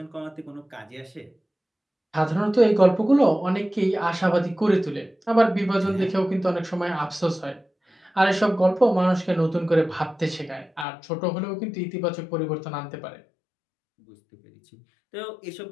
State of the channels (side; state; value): right; drops out; at 10.9 s